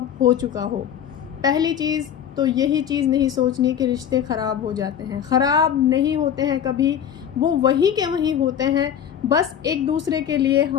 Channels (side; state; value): right; quieter; 9.1 dB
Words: हो चुका हो। पहली चीज़ तो यही चीज़ नहीं सोचनी कि रिश्ते ख़राब हो जाते हैं। ख़राब नहीं होते हैं कभी, वो वहीं के वहीं होते हैं। बस एक दूसरे के लिए